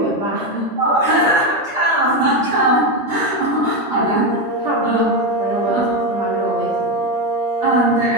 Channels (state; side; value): normal; both; correlation 0.11